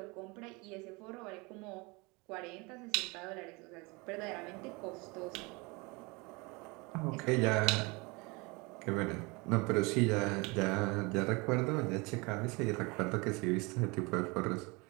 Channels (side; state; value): left; quieter; 26.8 dB